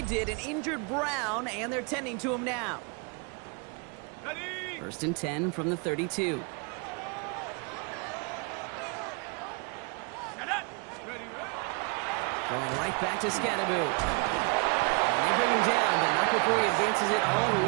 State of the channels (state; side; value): quieter; left; 32.9 dB